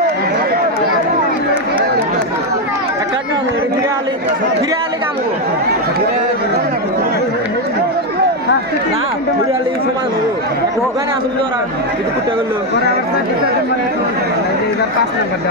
ফিরে আলি কাম না ফিরে আলি সমান হবো ওখানে আসলে ওরা কিছু কুটে করলো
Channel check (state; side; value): normal; both; correlation 0.06